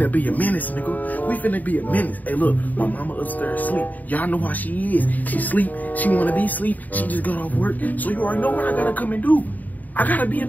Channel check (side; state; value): right; late; 0.081 ms